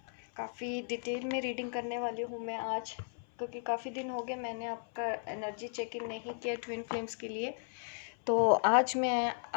काफ़ी डिटेल में रीडिंग करने वाली हूँ मैं आज, क्योंकि काफ़ी दिन हो गए मैंने आपका एनर्जी चेकिंग नहीं किया ट्विन फ्लेम्स के लिए। तो आज मैं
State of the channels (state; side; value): silent; right; 54 dB below the other